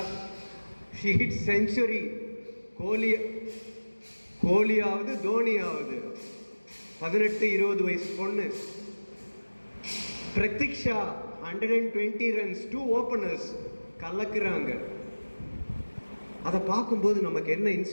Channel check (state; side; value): inverted; both; correlation -1.00